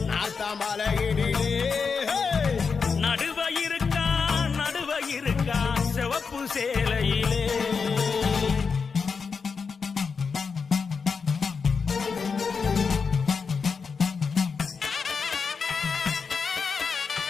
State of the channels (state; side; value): quieter; right; 5.4 dB